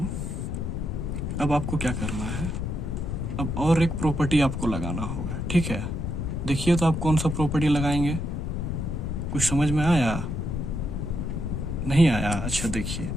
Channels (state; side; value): noise; left; rumble, 2 dB below the sound